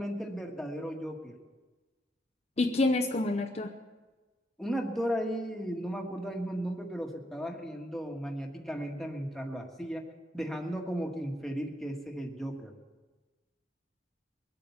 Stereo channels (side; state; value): both; normal; correlation 0.77